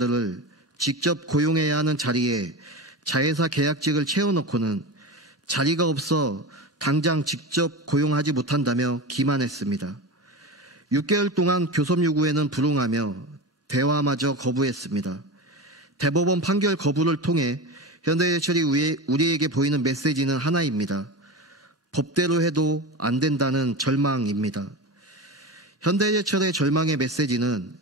직접 고용해야 하는 자리에 자회사 계약직을 채워놓고는 자리가 없어 당장 직접 고용하지 못한다며 기만했습니다. 6개월 동안 교섭 요구에는 불응하며 대화마저 거부했습니다. 대법원 판결 거부를 통해 현대제철이 우리에게 보이는 메시지는 하나입니다. 법대로 해도 안 된다는 절망입니다. 현대제철의 절망의 메시지는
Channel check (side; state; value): both; normal; correlation 0.25